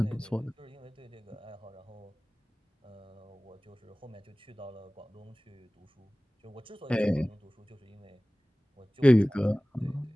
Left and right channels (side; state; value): both; normal; correlation 0.98